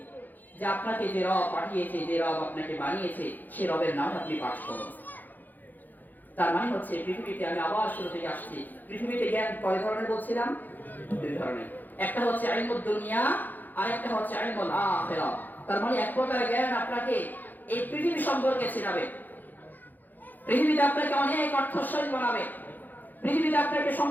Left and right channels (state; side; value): late; right; 0.085 ms